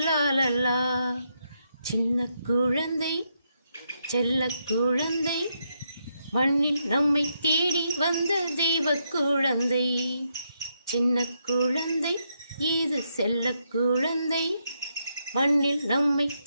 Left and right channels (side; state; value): both; inverted; correlation -0.80